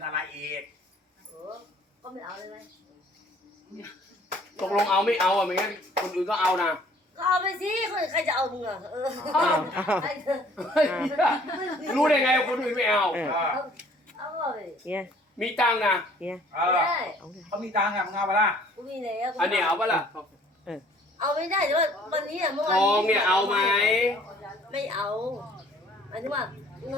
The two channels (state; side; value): normal; both; correlation 0.56